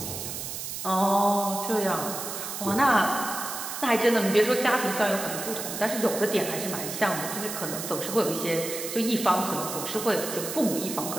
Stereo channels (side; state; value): right; noise; hiss, 6 dB below the sound